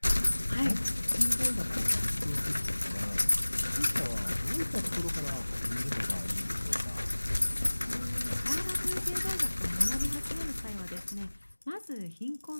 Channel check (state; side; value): inverted; both; correlation -1.00